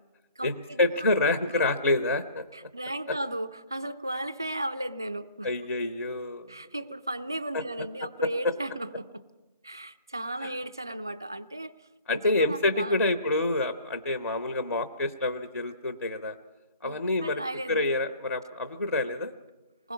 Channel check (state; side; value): inverted; both; correlation -0.51